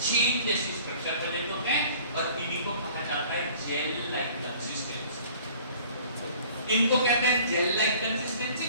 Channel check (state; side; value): inverted; both; correlation -0.50